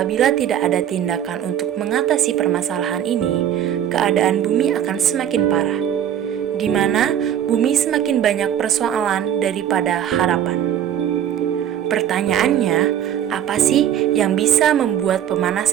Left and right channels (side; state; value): left; quieter; 10.1 dB